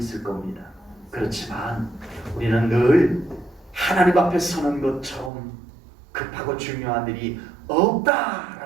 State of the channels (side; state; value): left; drops out; at 5.3 s